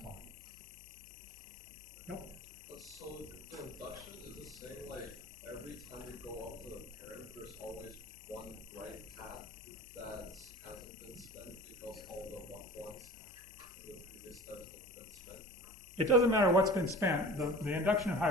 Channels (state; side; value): noise; left; hum, 25 dB below the sound